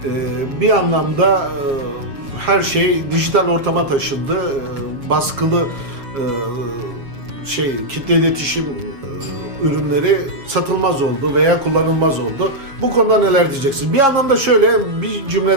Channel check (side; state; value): left; late; 7.3 ms